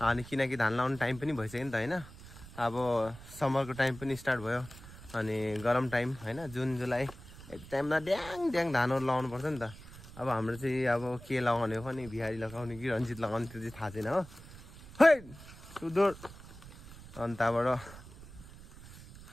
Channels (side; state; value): right; noise; rumble, 17 dB below the sound